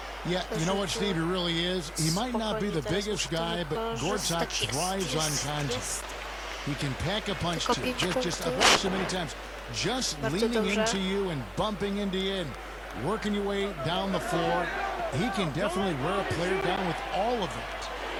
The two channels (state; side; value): identical; both; correlation 1.00